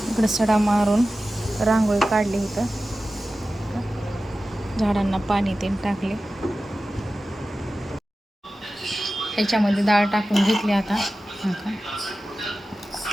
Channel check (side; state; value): both; normal; correlation 0.94